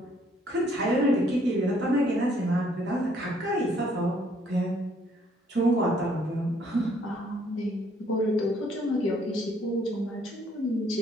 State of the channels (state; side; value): normal; both; correlation 0.65